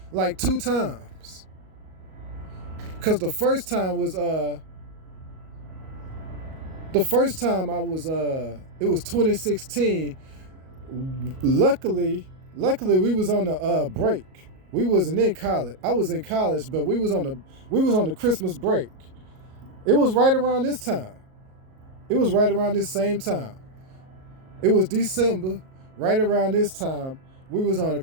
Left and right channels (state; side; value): late; left; 38 ms